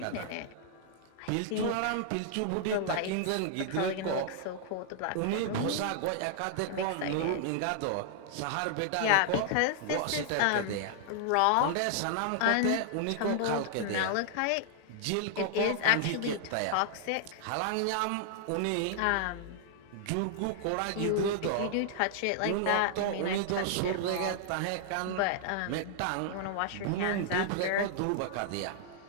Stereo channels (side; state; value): both; different; correlation -0.01